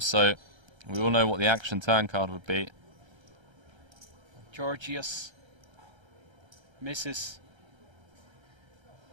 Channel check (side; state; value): left; late; 1.3 ms